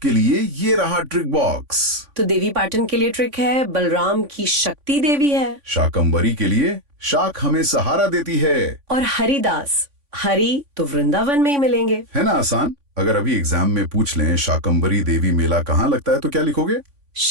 लिए ये रहा ट्रिक बॉक्स। तो देवी पाटन के लिए ट्रिक है, बलराम की शक्ति देवी है। शाकंभरी के लिए शाक हमें सहारा देती है। और हरिदास, हरि तो वृंदावन में ही मिलेंगे। है ना आसान? अगर अभी एग्जाम में पूछ लें शाकंभरी देवी मेला कहाँ लगता है तो क्या लिखोगे?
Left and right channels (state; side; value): late; left; 3.5 ms